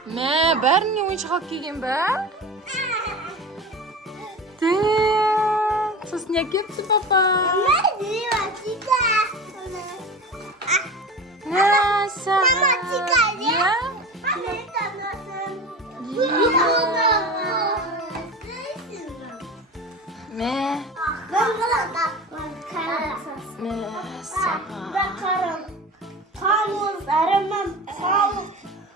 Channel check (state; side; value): normal; both; correlation 0.31